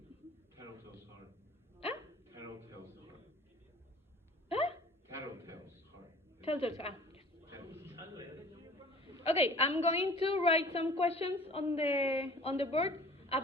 Tattletale's heart. ¿Ah? Tattletale's heart. ¿Ah? Tattletale's heart. Telltales, yes. Tattletale. Okay, I'm going to write some questions on the board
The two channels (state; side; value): normal; both; correlation 0.48